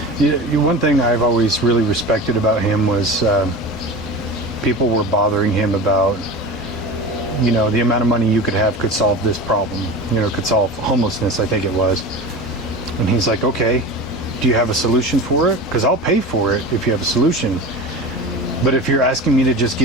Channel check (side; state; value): both; normal; correlation 0.31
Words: one thing I've always really respected about him was people were bothering him about, the amount of money you could have could solve this problem, could solve homelessness, I think it was. And he's like, okay, do you have a solution for it? Because I'll pay for it if you have a solution. But if you're asking me to just